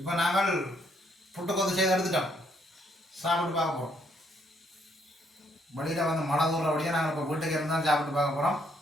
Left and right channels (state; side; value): normal; both; correlation 0.70